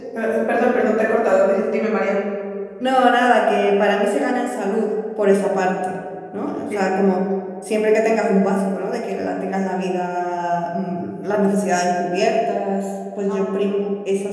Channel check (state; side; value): identical; both; correlation 1.00